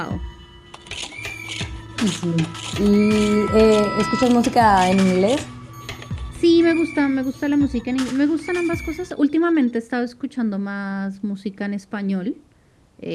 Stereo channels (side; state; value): both; identical; correlation 1.00